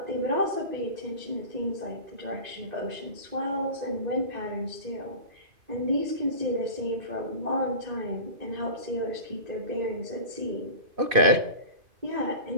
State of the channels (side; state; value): left; late; 2.5 ms